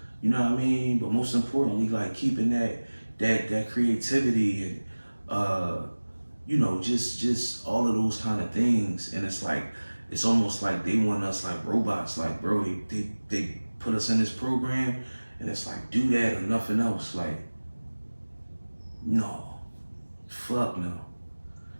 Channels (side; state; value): both; inverted; correlation -1.00